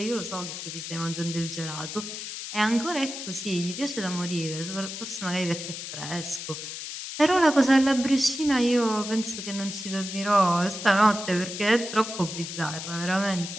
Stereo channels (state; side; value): noise; left; hiss, 8 dB below the sound